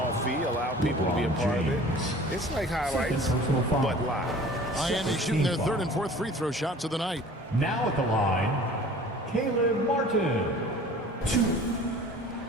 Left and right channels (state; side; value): normal; both; correlation 0.46